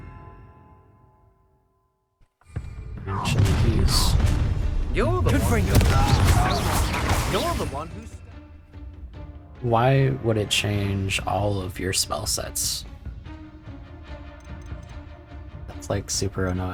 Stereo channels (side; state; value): both; identical; correlation 1.00